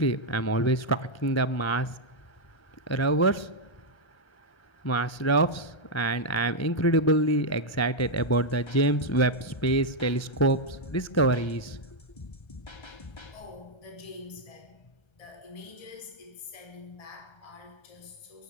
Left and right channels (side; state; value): right; late; 1.3 ms